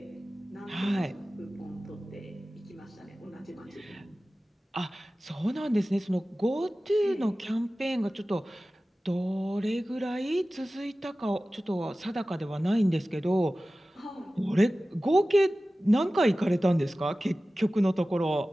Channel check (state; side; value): normal; both; correlation 0.96